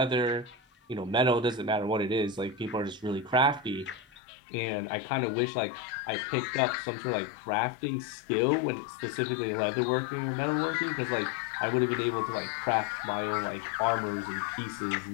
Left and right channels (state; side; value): drops out; right; at 4.0 s